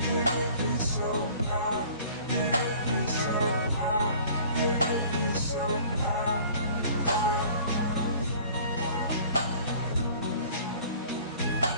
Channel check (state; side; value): inverted; both; correlation -0.49